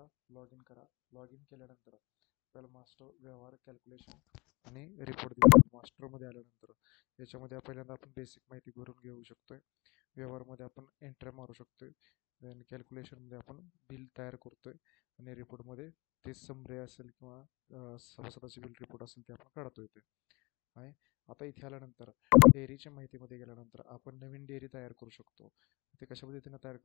लॉग इन करा. लॉग इन केल्यानंतर आपल्याला मास्टर व्यवहार कॅल्क्युलेशन आणि रिपोर्ट दिला. मास्टरमध्ये आल्यानंतर याच्यामध्ये पहिल्यांदा आपण बेसिक माहिती भरून घेऊ शकतोय. व्यवहारमध्ये आपण एंट्री मारू शकतोय. देन कॅल्क्युलेशनमध्ये आपण बिल तयार करतोय आणि रिपोर्टमध्ये ते समरी असेल किंवा सभासदाचे बिल रिपोर्ट असेल ते आपण काढतोय ते आहे. आता इथे आल्यानंतर डेअरीच्या माहितीमध्ये गेल्यानंतर आपण नवीन डेअरी तयार करू शकतो. ते कशा पद्धतीने तयार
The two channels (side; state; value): right; quieter; 25.1 dB